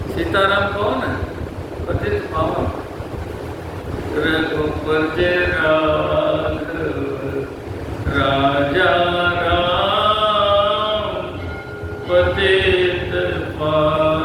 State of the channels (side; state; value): both; identical; correlation 1.00